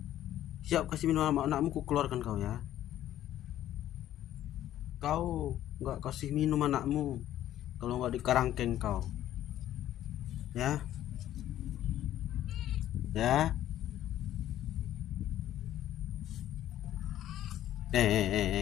Siap kasih minum anakmu, ku keluarkan kau ya. Kau nggak kasih minum anakmu kalau nggak dikarangkeng kau. Ya, ya.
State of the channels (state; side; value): quieter; right; 12.5 dB